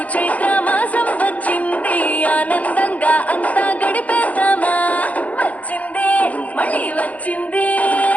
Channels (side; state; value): right; late; 0.070 ms